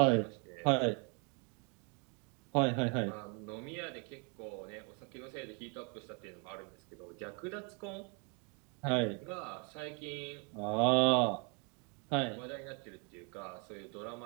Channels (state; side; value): quieter; left; 35.5 dB